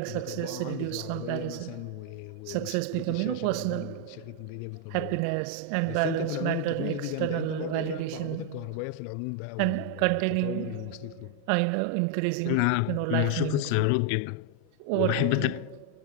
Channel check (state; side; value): different; both; correlation 0.00